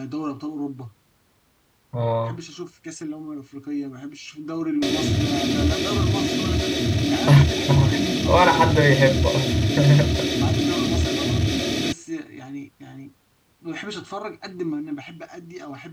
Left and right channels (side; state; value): both; identical; correlation 1.00